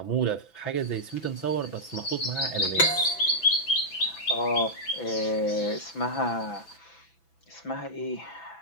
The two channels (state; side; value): late; right; 6.0 ms